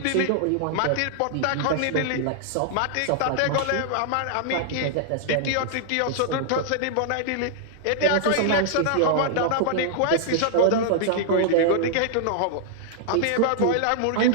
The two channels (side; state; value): both; different; correlation -0.01